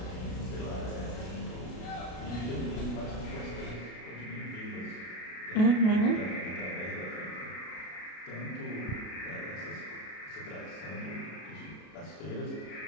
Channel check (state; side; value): late; right; 33 ms